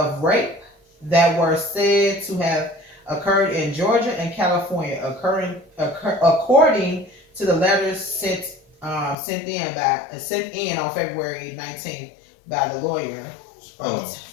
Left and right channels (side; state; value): right; drops out; at 9.2 s